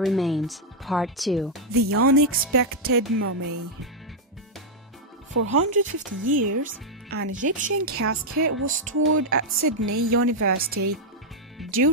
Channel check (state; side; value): normal; both; correlation -0.03